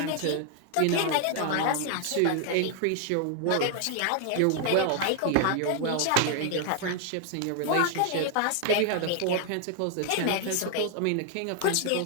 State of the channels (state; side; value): different; both; correlation 0.00